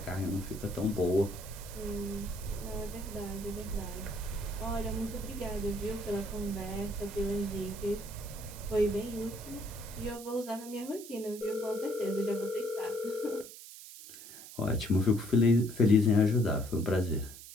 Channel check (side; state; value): right; noise; hiss, 15 dB below the sound